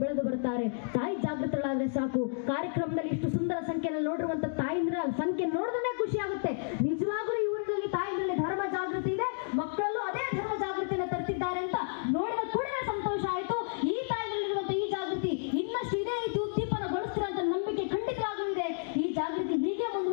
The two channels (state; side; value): silent; right; digital silence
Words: ಬೆಳೆದು ಬರ್ತಾರೆ. ತಾಯಿ ಜಾಗೃತಳಾದ್ರೆ ಸಾಕು. ಕಾರ್ಯಕ್ರಮದಲ್ಲಿ ಇಷ್ಟು ಸುಂದರ ಸಂಖ್ಯೆಯಲ್ಲಿ ನೋಡಿರುವಂತ ತಾಯಿಂದ್ರ ಸಂಖ್ಯೆ ನೋಡಿದ್ರೆ ಖುಷಿ ಆಗುತ್ತೆ. ನಿಜವಾಗ್ಲೂ ಇವರಲ್ಲಿ ತಾಯಿನಲ್ಲಿ ಧರ್ಮ ಜಾಗೃತಿ ಇದೆ, ಮಕ್ಕಳಲ್ಲೂ ಅದೇ ಧರ್ಮ ಜಾಗೃತಿಯನ್ನು ತರ್ತಿದ್ದಾರೆ ಅಂತ ನೋಡಿದ ಕೂಡಲೇ ಸಂತೋಷ ಆಯ್ತು. ಈ ತಾಯಿನಲ್ಲಿರುವಂತ ಈ ಜಾಗೃತಿ ಇನ್ನಷ್ಟು ಇದೇ ರೀತಿ ಉದ್ದೀಪನಗೊಳಿಸ್ತಾರೆ ಅಂತ ನಂಬಿಕೆ ಖಂಡಿತವಾಗ್ಲೂ ಇದೆ. ಈ ಜಾಗೃತಿ ಹೀಗೆ